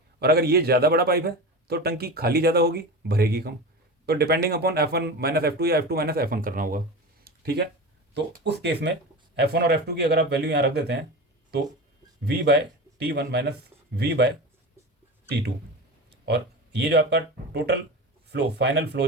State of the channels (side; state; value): both; normal; correlation 0.28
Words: और अगर ये ज़्यादा बड़ा पाइप है तो टंकी खाली ज़्यादा होगी, भरेगी कम। तो depending upon F1 minus F2 या F2 माइनस F1 करना होगा, ठीक है। तो उस केस में F1 और F2 की अगर आप वैल्यू यहाँ रख देते हैं तो V by T1 minus V by T2, और ये जो आपका टोटल फ्लो, फाइनल फ्लो